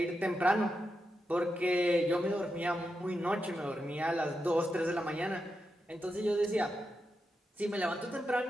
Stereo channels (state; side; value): normal; both; correlation 0.87